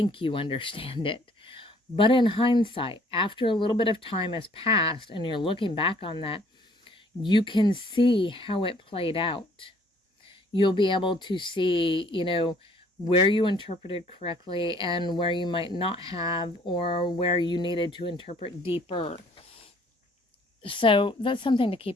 you understand it. But in hindsight, after a little bit of time has passed and you're looking back on that, you can see how it played out. You'll be able to see, where you interpreted correctly and where you might not have, or where you needed to interpret deeper. So that's something to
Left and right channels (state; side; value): normal; both; correlation 0.59